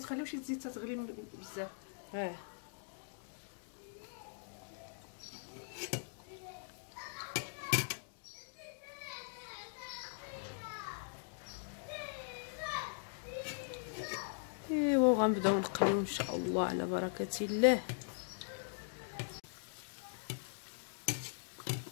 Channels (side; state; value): right; silent; digital silence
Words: تخليوش الزيت تغلي بزاف. ايوا غنبداو نقليو ان شاء الله على بركه الله.